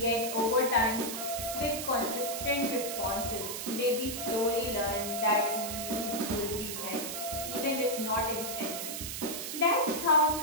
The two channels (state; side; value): noise; right; hiss, 5 dB below the sound